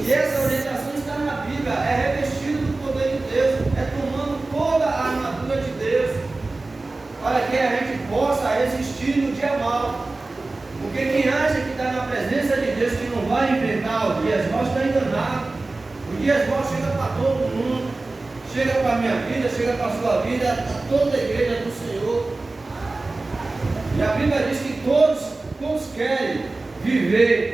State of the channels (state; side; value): quieter; left; 3.3 dB